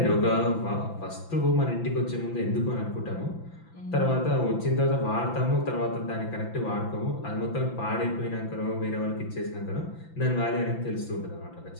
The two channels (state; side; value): late; right; 5.9 ms